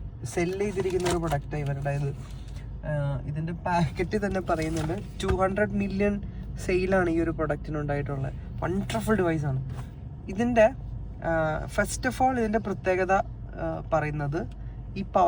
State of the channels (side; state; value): both; identical; correlation 1.00